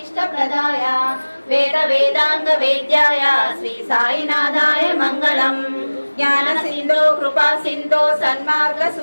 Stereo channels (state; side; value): inverted; both; correlation -1.00